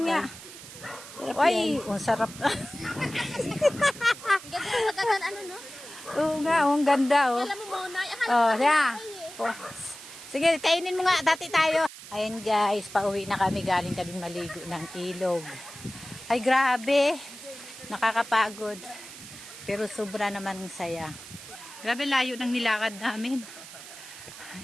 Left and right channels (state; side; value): noise; right; hiss, 15 dB below the sound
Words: nga. Sarap Ay, yan. ang sarap. Ganda ano, no? Oo nga, ang ganda, oh. Alam mo muna. Oh, siya. Oh. Sige, kainin mo nga. Dati tayo. Ayan guys, pauwi na kami. Galing kami maligo ng ilog. Ay, grabe. Nakakapagod. Pero sobra naman ang saya. Grabe, layo ng nilakad namin.